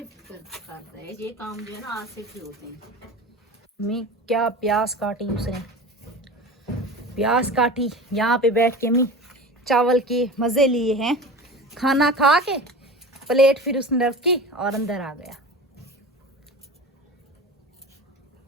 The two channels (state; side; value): normal; both; correlation 0.33